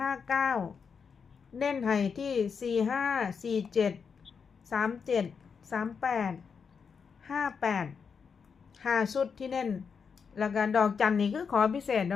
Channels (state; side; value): quieter; right; 6.0 dB